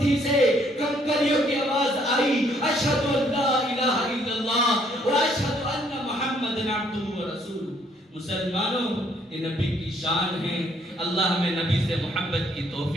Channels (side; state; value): both; normal; correlation 0.66